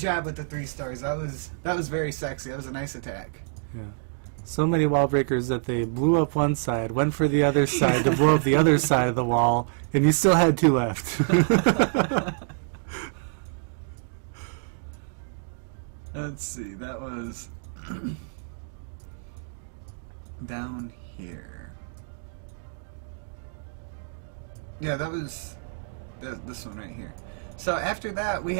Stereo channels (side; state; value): left; silent; digital silence